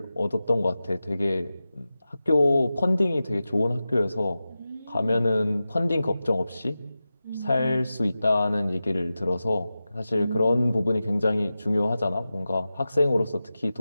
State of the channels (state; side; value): inverted; both; correlation -0.94